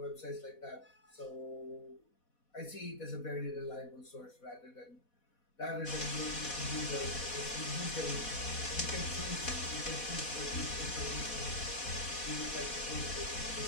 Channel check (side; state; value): right; late; 4.1 ms